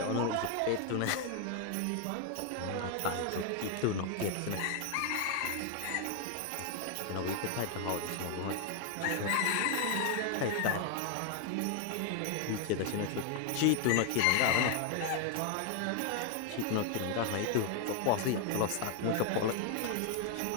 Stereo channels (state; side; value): different; both; correlation 0.00